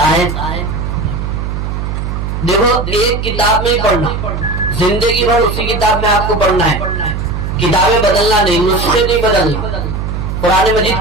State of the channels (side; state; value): right; noise; hum, 4 dB below the sound